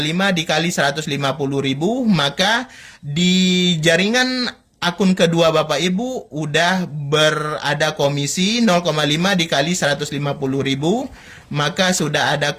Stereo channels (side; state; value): both; identical; correlation 1.00